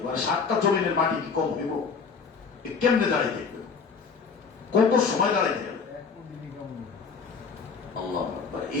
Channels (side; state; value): right; quieter; 5.4 dB